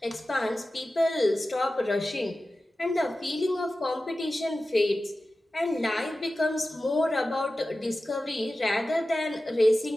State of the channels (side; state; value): both; normal; correlation 0.94